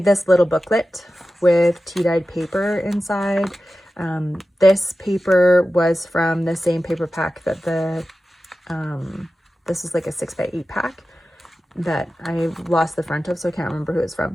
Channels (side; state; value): both; normal; correlation 0.94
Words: this little booklet with tea dyed paper inside. This paper was from the same paper pack that this is like a 6x8 pack that I lost the front of, so I can't remember who it's